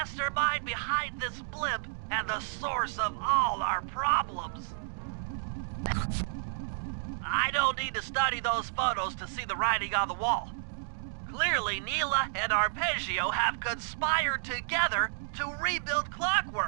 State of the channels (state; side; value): silent; left; digital silence